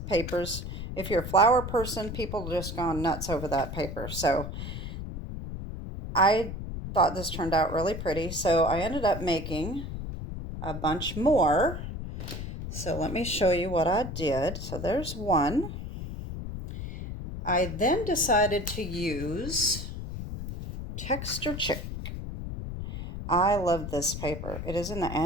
papers. If you're a flower person, people just gone nuts over that paper. So I thought this turned out really pretty. So I ended up making a bunch more. So let me show you what I did. So there's one. I then decided to use Texture Chic. I love this paper. It is in the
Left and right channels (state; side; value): noise; left; rumble, 7 dB below the sound